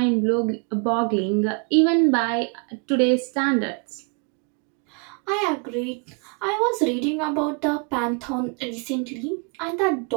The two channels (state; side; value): quieter; left; 36.7 dB